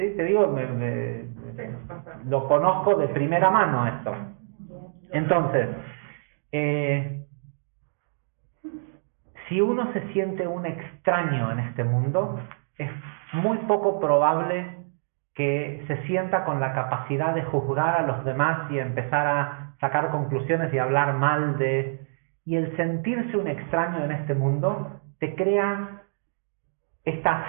Te digo, lo conozco de primera mano esto. Entonces, si uno se siente un extraño en este mundo, es muy poco probable que se sienta con la capacidad de juzgar a los demás y empezar a sacar conclusiones y hablar mal de... Y el sentirse un extraño en este mundo te crea esta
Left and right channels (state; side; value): silent; left; digital silence